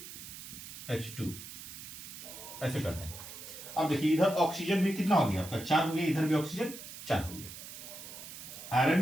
H2 ऐसे कर देंगे। अब देखिए इधर ऑक्सीजन भी कितना हो गया आपका, 4 हो गया, इधर भी ऑक्सीजन 4 हो गया।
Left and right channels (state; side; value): noise; right; hiss, 12 dB below the sound